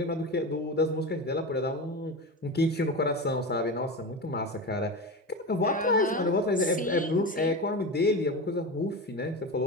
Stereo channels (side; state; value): both; normal; correlation 0.23